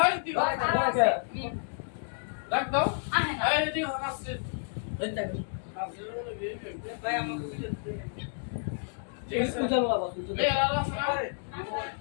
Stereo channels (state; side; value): silent; right; digital silence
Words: এদিকে ডাক দাও। এই এদিকে হয়, আসছে। ভাই আমার ঠিক আছে। পূজা বাবা পূজা। এই আর আছে না?